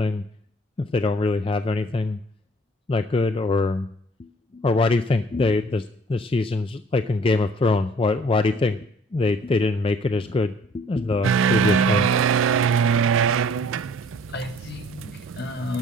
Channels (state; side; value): normal; both; correlation 0.55